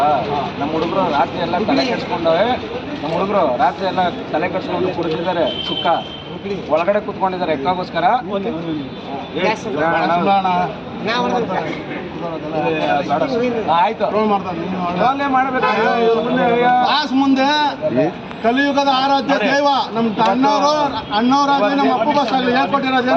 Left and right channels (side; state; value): both; identical; correlation 1.00